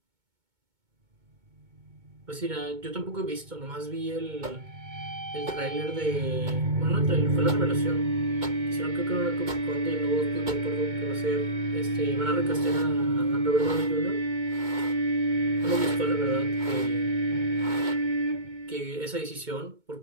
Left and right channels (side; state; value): left; late; 2.2 ms